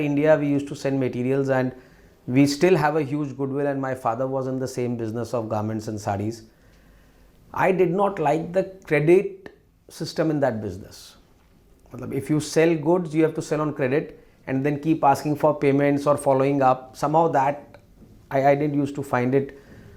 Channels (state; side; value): identical; both; correlation 1.00